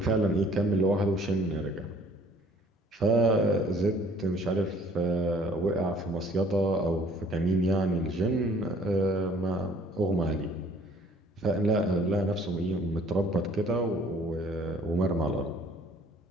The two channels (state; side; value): normal; both; correlation 0.56